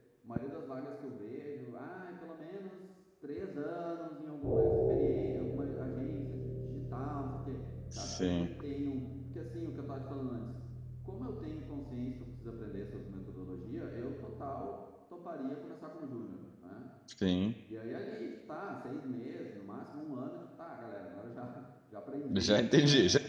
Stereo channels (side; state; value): both; identical; correlation 1.00